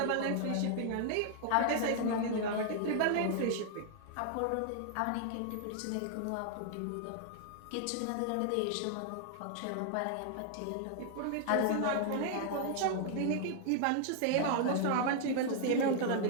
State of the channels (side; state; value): both; different; correlation 0.00